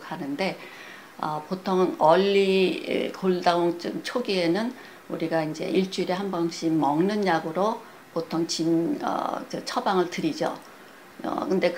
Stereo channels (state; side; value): identical; both; correlation 1.00